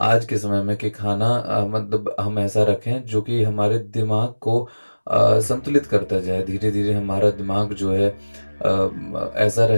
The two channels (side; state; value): both; inverted; correlation -1.00